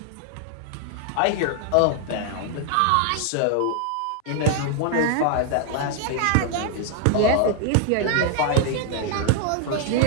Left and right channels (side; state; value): both; different; correlation 0.00